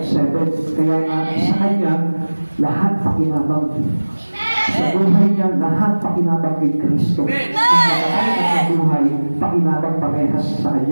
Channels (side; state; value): both; inverted; correlation -1.00